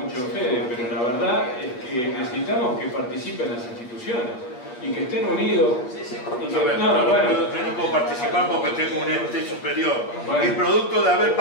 en Fede, pero la verdad es que necesitamos que participen las instituciones y que estén unidos. Y que, yo no puedo participar porque tengo un ente superior. Y producto de haber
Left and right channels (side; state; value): right; late; 8.2 ms